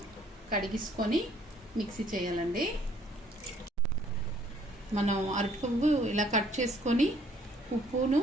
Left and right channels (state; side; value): normal; both; correlation 0.62